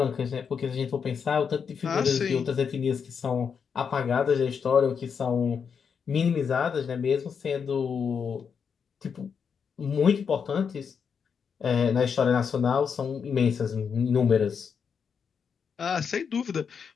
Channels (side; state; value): right; quieter; 6.6 dB